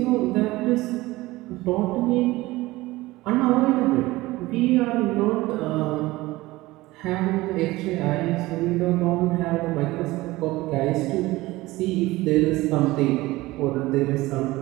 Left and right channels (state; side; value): quieter; left; 19.2 dB